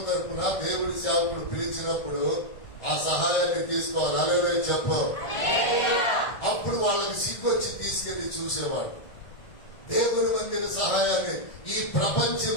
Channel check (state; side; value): late; right; 1.5 ms